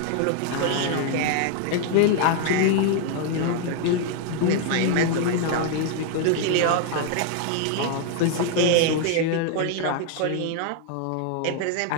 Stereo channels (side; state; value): both; different; correlation 0.00